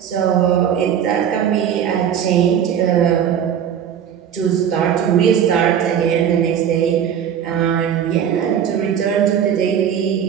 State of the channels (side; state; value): left; quieter; 8.9 dB